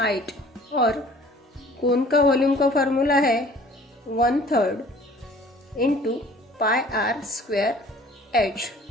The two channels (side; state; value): both; normal; correlation 0.51